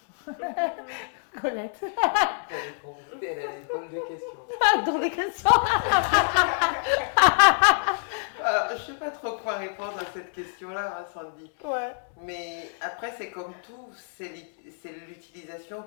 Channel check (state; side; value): silent; right; digital silence